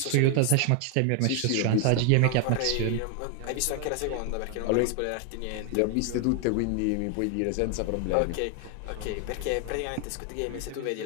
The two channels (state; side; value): different; both; correlation 0.00